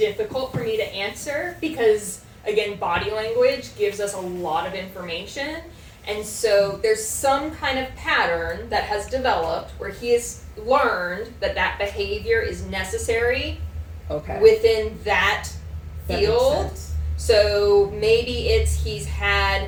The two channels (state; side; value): identical; both; correlation 1.00